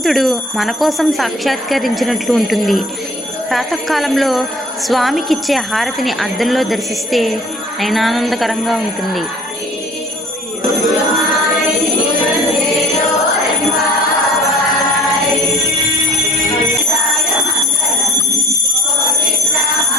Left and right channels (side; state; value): both; normal; correlation 0.50